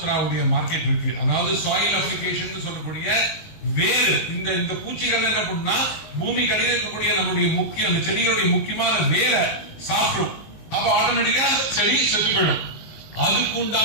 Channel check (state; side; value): late; right; 19 ms